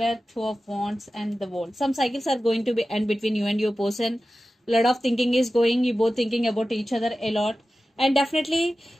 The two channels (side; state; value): both; normal; correlation 0.94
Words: 2 of Wands and the World. Some cycles are going to be end between you and your person. A lot of thinking is going. You both thinking about each other a lot. And definitely